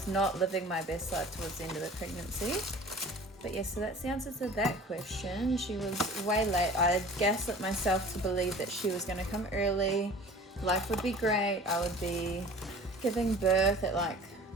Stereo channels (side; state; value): both; normal; correlation 0.43